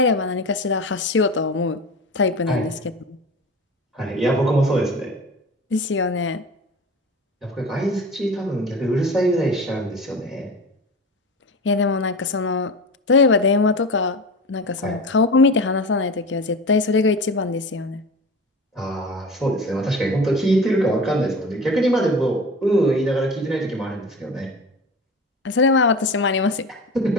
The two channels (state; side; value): normal; both; correlation 0.32